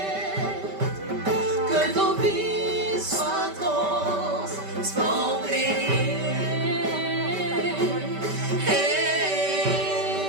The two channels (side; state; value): left; late; 5.1 ms